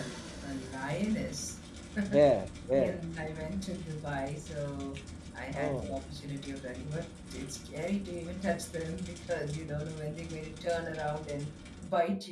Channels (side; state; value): both; identical; correlation 1.00